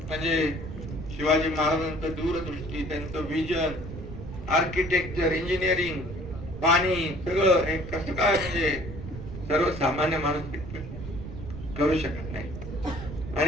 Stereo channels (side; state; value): right; noise; rumble, 9 dB below the sound